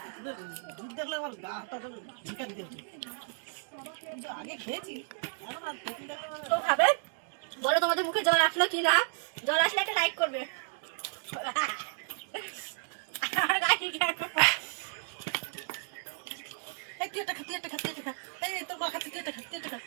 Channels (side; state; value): left; silent; digital silence